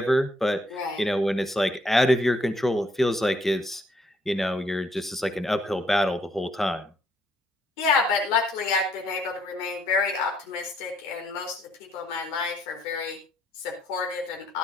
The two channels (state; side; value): normal; both; correlation 0.69